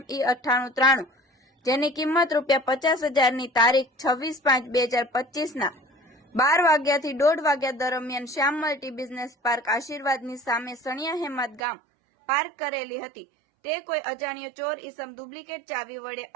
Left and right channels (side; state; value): left; drops out; at 11.6 s